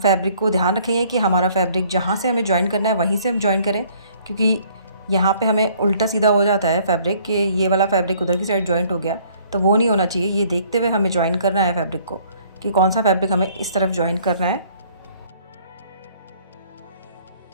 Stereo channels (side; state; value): both; inverted; correlation -0.60